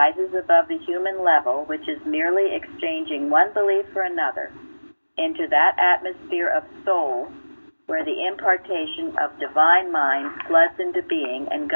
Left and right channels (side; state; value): both; inverted; correlation -1.00